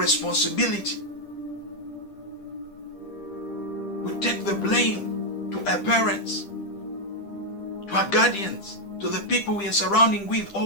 We take the blame to our parents, to our guardians, to the people we are surrounding with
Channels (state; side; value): late; right; 10 ms